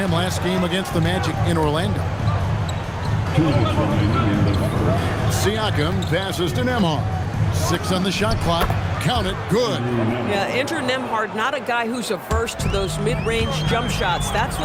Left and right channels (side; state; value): both; identical; correlation 1.00